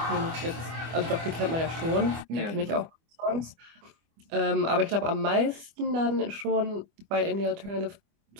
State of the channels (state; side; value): late; left; 25 ms